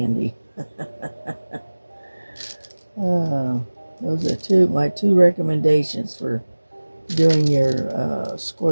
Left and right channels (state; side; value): inverted; both; correlation -1.00